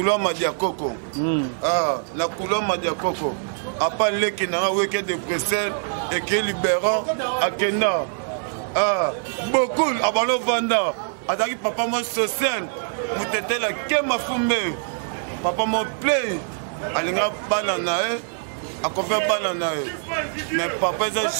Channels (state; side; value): silent; left; 63 dB below the other